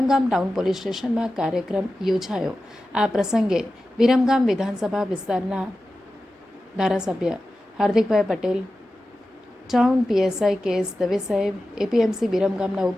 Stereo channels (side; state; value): both; normal; correlation 0.93